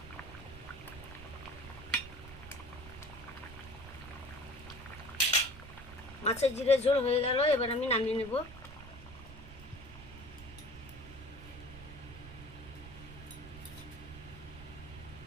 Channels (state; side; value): noise; right; rumble, 14 dB below the sound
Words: মাছের জিরে ঝোল হয়ে গেল, এবার আমি নামিয়ে নেব।